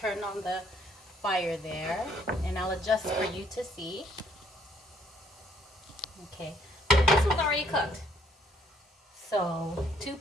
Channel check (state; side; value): normal; both; correlation 0.65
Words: on the fire there, and I'll adjust for you to see. Okay, this one's already cooked. So 2